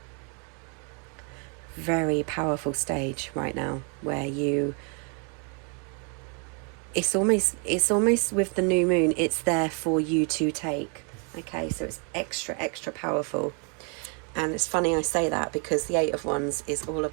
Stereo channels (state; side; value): quieter; left; 38.2 dB